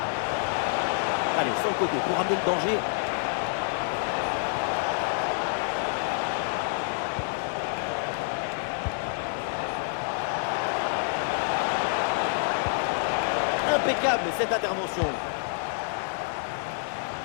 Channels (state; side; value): silent; right; 60 dB below the other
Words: Allez, sur le côté pour amener le danger. Impeccable cette intervention.